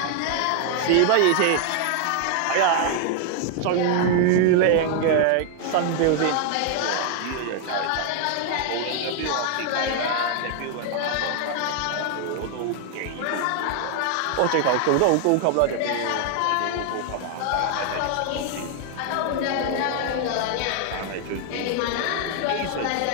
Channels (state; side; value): different; both; correlation 0.00